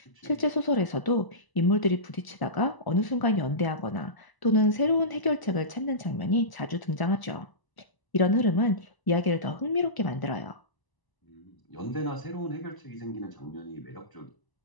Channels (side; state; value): right; late; 1.0 ms